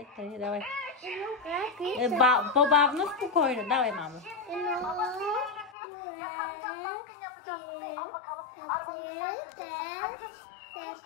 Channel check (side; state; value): right; drops out; at 5.7 s